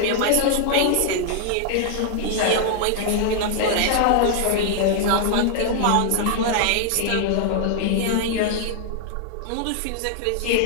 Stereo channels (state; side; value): different; both; correlation -0.01